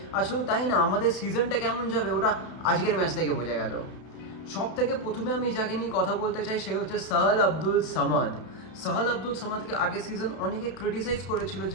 আর শুধু তাই না, আমাদের সিজনটা কেমন যাবে ওটা আজকের ম্যাচ থেকে বোঝা গেল। সব থেকে প্রথমে আমি যাকে নিয়ে কথা বলতে চাই সে হচ্ছে সাহাল আব্দুল সামাদ। সাহাল আব্দুল সামাদকে আগের সিজন অনেকে ক্রিটিসাইজ করেছিল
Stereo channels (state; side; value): late; right; 32 ms